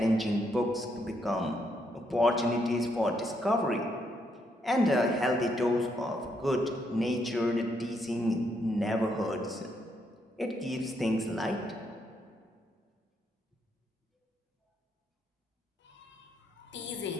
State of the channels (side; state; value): both; normal; correlation 0.76